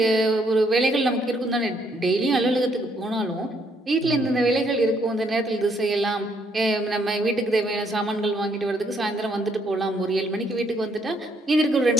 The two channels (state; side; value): normal; both; correlation 0.70